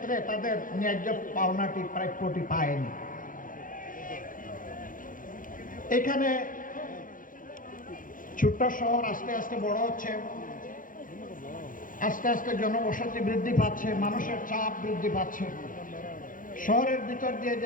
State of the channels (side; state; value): right; late; 0.39 ms